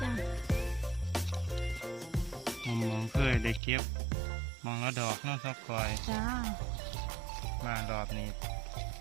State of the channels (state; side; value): drops out; left; at 3.6 s